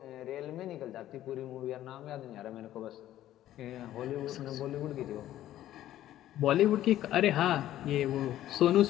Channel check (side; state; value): right; quieter; 13.1 dB